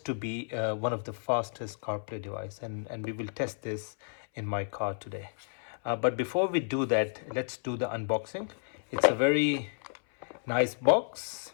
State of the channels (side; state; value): right; silent; 57 dB below the other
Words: to be one of the fastest CarPlay device, and we will test this in my car today. But before we do that, let's do the unboxing. It's a very nice box,